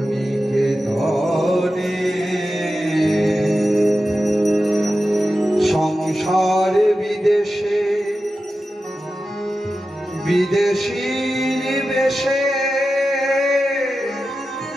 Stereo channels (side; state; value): both; normal; correlation 0.92